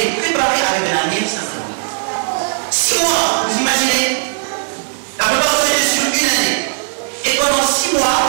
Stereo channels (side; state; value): left; silent; digital silence